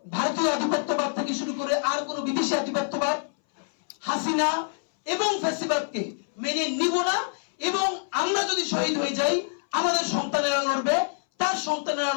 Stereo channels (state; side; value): silent; right; 59 dB below the other